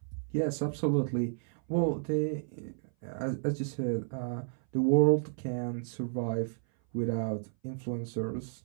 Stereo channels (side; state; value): left; silent; 56 dB below the other